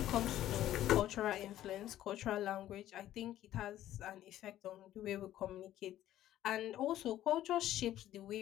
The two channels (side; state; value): right; quieter; 13.1 dB